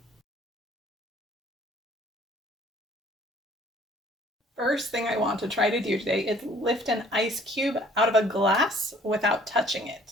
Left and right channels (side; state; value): both; normal; correlation 0.56